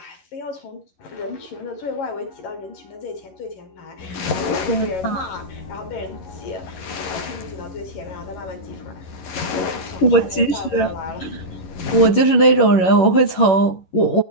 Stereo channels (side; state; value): right; late; 11 ms